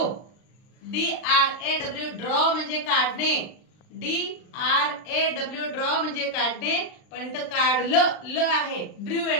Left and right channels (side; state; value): right; late; 39 ms